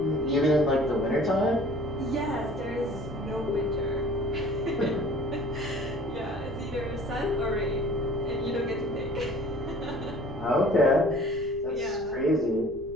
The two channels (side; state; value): left; noise; rumble, 17 dB below the sound